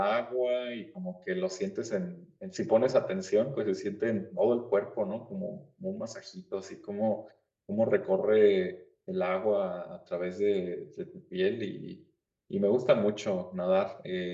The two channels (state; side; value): identical; both; correlation 1.00